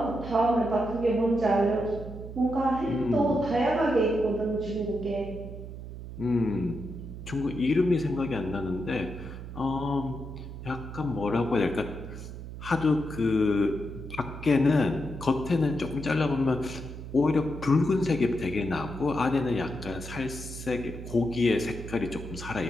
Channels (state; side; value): noise; right; hum, 10 dB below the sound